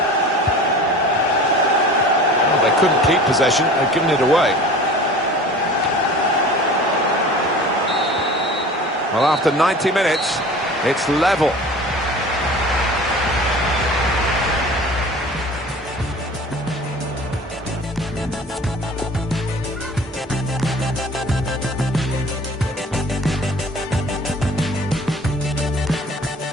Well, they couldn't keep possession, they've given it away. Well, after 90 minutes, it's level.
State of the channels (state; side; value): normal; both; correlation 0.42